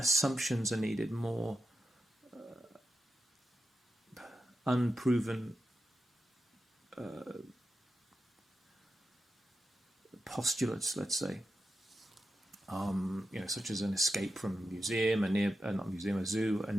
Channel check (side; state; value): both; normal; correlation 0.89